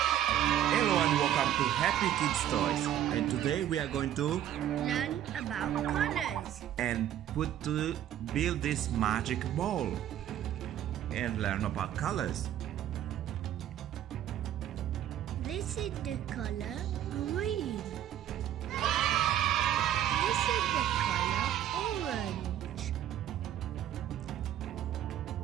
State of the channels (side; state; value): left; quieter; 11.3 dB